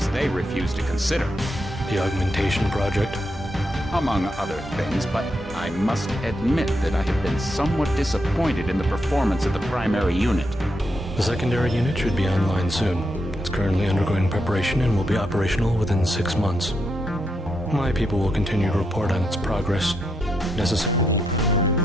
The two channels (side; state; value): both; normal; correlation 0.81